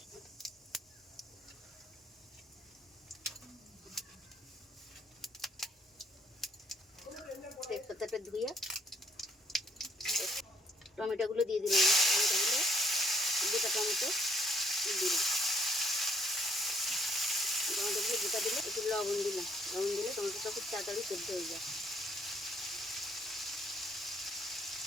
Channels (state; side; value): normal; both; correlation 0.66